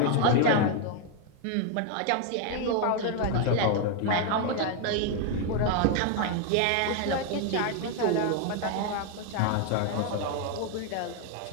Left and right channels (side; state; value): both; different; correlation 0.01